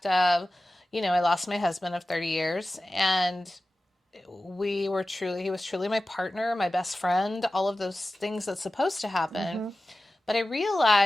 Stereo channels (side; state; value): both; normal; correlation 0.95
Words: of, I lost my husband of 30 years, and he was truly my partner, my best friend, all of those things that's supposed to happen. But I